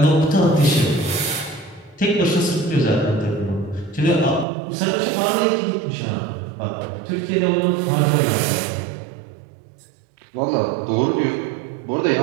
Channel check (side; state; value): left; drops out; at 4.5 s